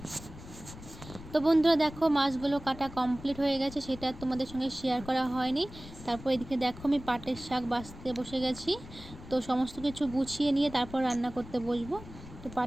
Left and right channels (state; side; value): noise; left; rumble, 15 dB below the sound